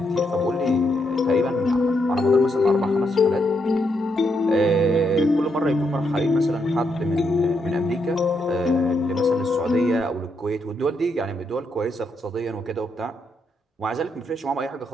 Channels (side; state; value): both; normal; correlation 0.79